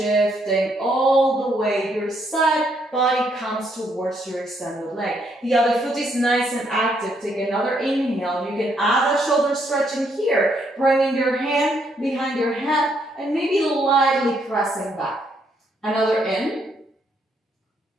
all the way. Your side body comes towards your extended leg. The other foot is nice and active. Take another inhale. You can add a shoulder stretch in here, bringing your hand behind your head and maybe lightly pressing back. Another in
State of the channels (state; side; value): normal; both; correlation 0.73